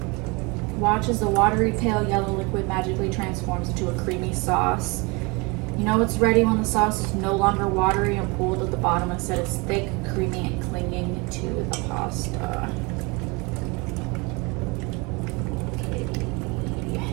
Watch as the watery pale yellow liquid magically transforms into a creamy sauce. You know it's ready when the sauce is no longer watery and pooled at the bottom. Instead it's thick, creamy, and clinging to the pasta.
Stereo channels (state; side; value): quieter; left; 27.9 dB